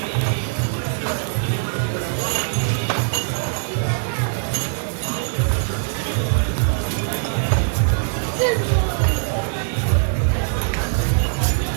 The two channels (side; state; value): left; silent; 63 dB below the other